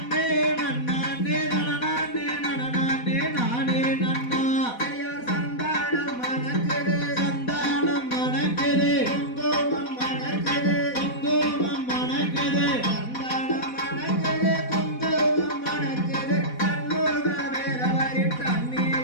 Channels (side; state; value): right; late; 4.1 ms